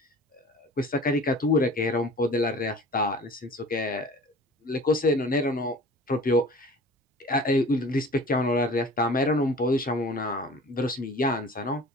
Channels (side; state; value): both; normal; correlation 0.44